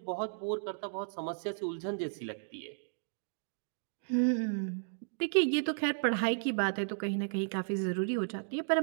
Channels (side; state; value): left; silent; digital silence